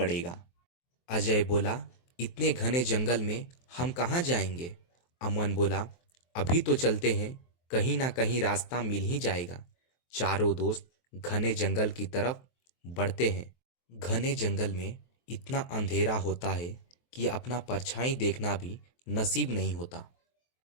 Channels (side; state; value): right; late; 23 ms